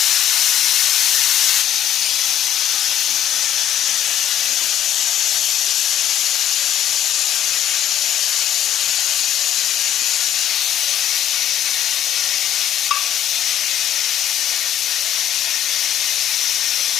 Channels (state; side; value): quieter; right; 10.9 dB